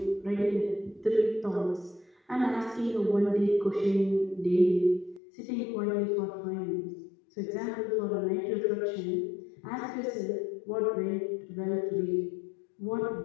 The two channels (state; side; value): drops out; right; at 5.2 s